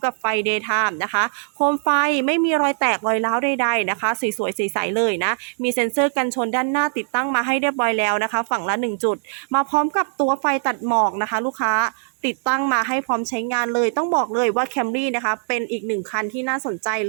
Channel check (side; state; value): left; silent; digital silence